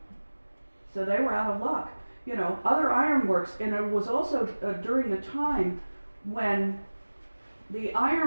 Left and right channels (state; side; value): inverted; both; correlation -1.00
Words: So they were out of luck. You know, other ironworks, and it was also during the time when the